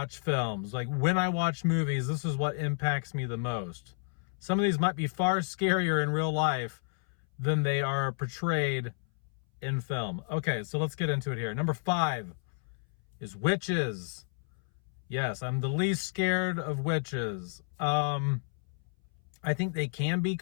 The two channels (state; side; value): silent; right; 57 dB below the other